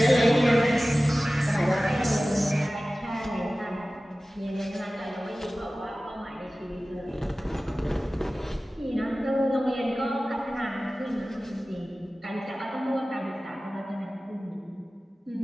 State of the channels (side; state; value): both; normal; correlation 0.97